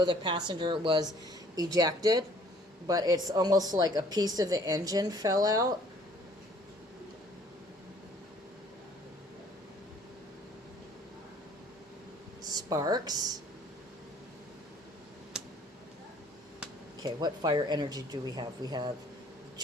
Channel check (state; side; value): normal; both; correlation 0.57